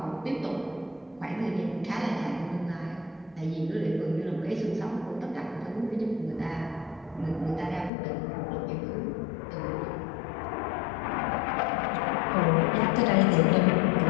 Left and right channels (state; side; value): drops out; right; at 7.9 s